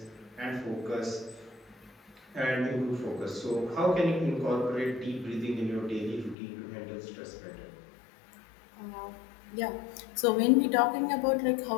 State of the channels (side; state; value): right; drops out; at 6.4 s